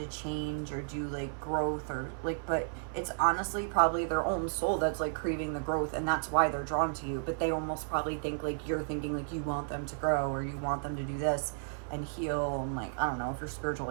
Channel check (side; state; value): left; silent; 56 dB below the other